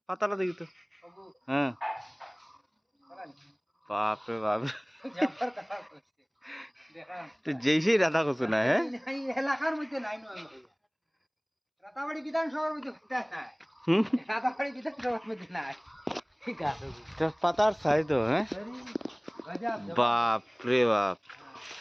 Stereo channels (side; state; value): both; identical; correlation 1.00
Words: পাতাটা দেখি তো। হ্যাঁ বাপ রে বাপ, তো যেই সেই রাধা কচু না, হ্যাঁ এলাকার মধ্যে নাই নয়, রাতাবাড়ি বিধানসভার মধ্যে নাই, রাতাবাড়ি বিধানসভার মধ্যে নাই। পাতার সাইজ তো, হ্যাঁ বাপ রে বাপ,